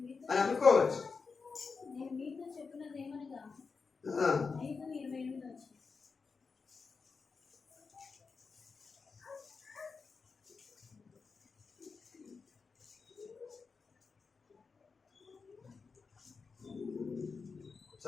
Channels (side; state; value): right; quieter; 4.9 dB